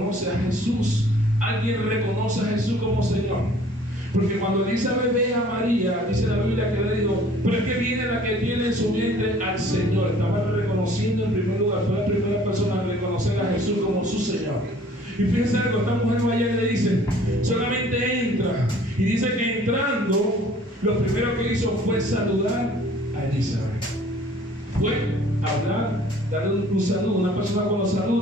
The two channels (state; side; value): normal; both; correlation 0.53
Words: a Jesús. Alguien reconoce a Jesús como Señor. Porque cuando Elizabeth ve a María, dice la Biblia que le dijo: pero es que viene la que tiene en su vientre al Señor. Estaba reconociendo en primer lugar, fue la primera persona a reconocer a Jesús como su Señor. Y fíjense algo, esta mujer vaya y le dice: solamente entra. Y dice que entrando, lo primero que hizo fue saludar a Elizabeth. Fue hablar, darle un saludo. Una persona cuando